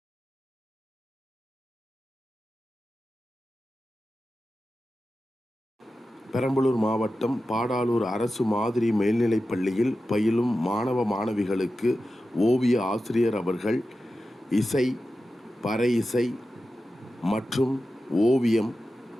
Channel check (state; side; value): normal; both; correlation 0.93